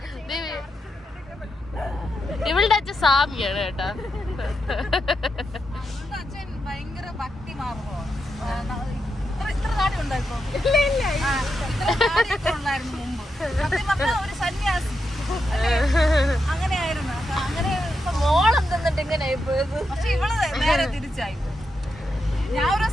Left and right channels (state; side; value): normal; both; correlation 0.85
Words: ഇവളുടെ അച്ഛൻ സ്വാമിയാണ് കേട്ടാ. അച്ഛൻ ഭയങ്കര ഭക്തി മാർഗമാണ്. ഇത്ര താടി ഉണ്ടായിപ്പോ ഉണ്ടായിരുന്നു മുമ്പ്. സത്യം പറഞ്ഞാൽ ഒരു സന്യാസി അങ്ങനെയായിരുന്നു. അങ്ങനെ മോളം തിന്നിട്ട് ഇങ്ങനെ പക്ഷെ ഇവള് നേരെ തിരിച്ചായി. ഞാൻ ഒരു